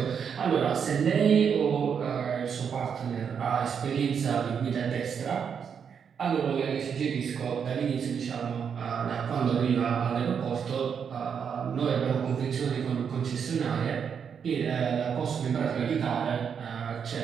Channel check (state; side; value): quieter; left; 7.1 dB